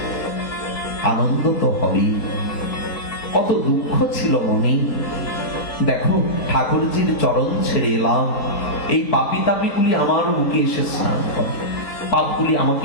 আনন্দ তো হবেই। কত দুঃখ ছিল মনে। দেখো, ঠাকুরজির চরণ ছেড়ে এলাম, এই পাপি তাপিগুলি আমার মুখে এসে স্নান করে, পাপগুলি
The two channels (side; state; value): right; late; 4.6 ms